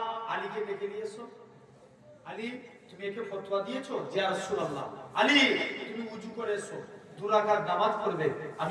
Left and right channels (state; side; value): identical; both; correlation 1.00